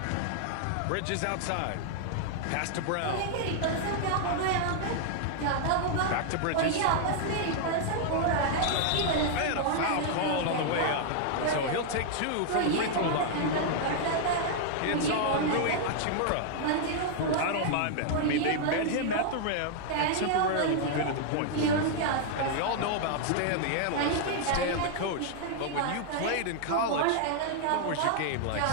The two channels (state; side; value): different; both; correlation -0.01